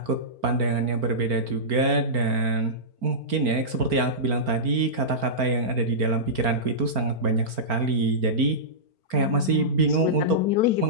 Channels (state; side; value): late; left; 4.4 ms